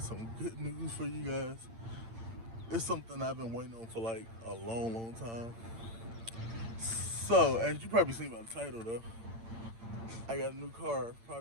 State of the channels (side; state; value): left; late; 8.8 ms